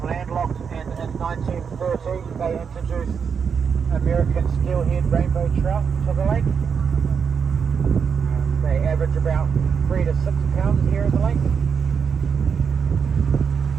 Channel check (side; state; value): left; quieter; 6.5 dB